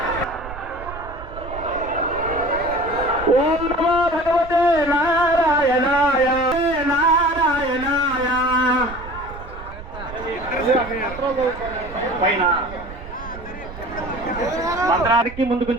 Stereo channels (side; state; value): right; noise; rumble, 13 dB below the sound